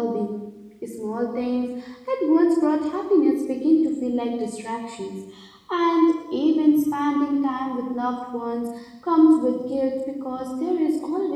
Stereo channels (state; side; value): identical; both; correlation 1.00